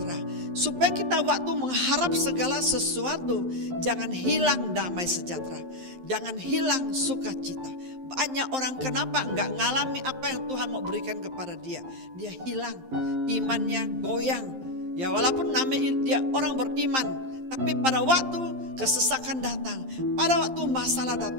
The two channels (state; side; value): late; left; 11 ms